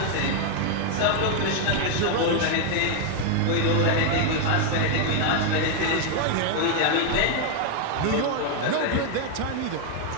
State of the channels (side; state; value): both; different; correlation 0.01